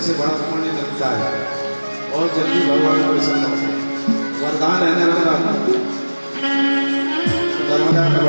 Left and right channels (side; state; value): both; inverted; correlation -1.00